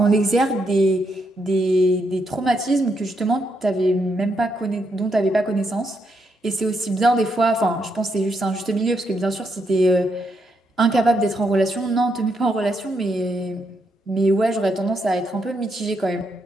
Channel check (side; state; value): both; normal; correlation 0.79